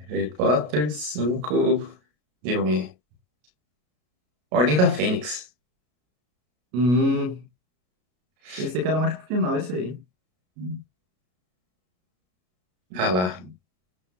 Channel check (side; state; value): left; late; 33 ms